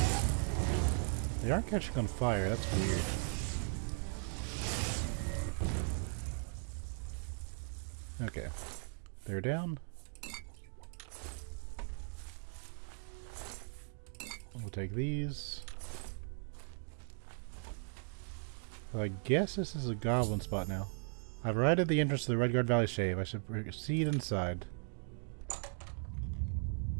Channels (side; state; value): left; silent; 52 dB below the other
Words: They aren't catching on fire, that's weird. Okay. They're down. We'll take these. I guess this is a goblin spot now. I've arrived at the entrance to the Redguard Valley Shave. I should proceed inside.